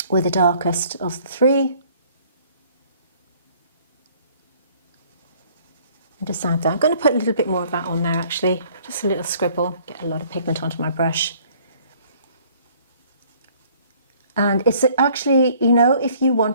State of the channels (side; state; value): both; inverted; correlation -0.58